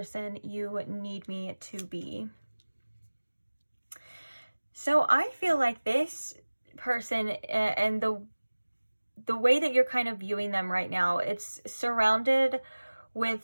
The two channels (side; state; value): both; inverted; correlation -1.00